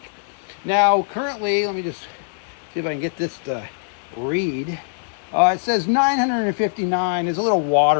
Now, currently, let me just see if I can get this to read. It says 959. There's a little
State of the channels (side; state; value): right; silent; digital silence